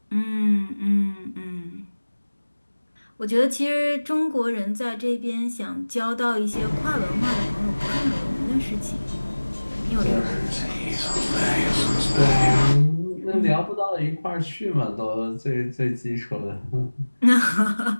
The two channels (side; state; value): both; inverted; correlation -1.00